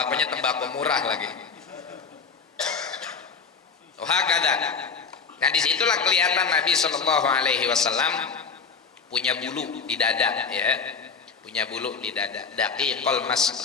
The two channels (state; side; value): quieter; right; 5.4 dB